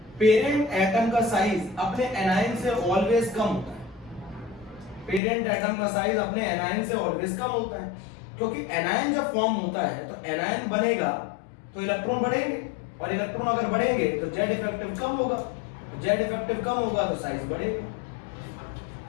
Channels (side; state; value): right; drops out; at 5.2 s